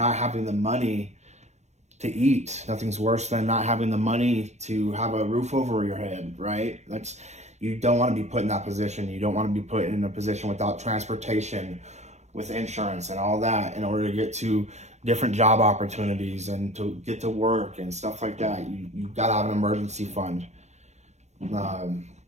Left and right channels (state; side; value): late; left; 0.33 ms